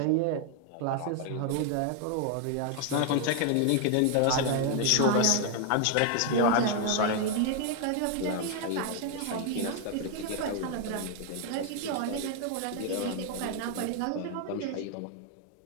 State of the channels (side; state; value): both; different; correlation 0.00